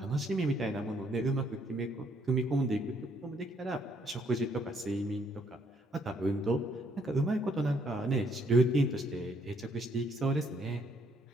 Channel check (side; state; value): both; normal; correlation 0.68